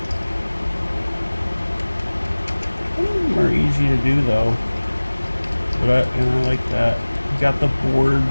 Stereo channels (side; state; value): both; inverted; correlation -1.00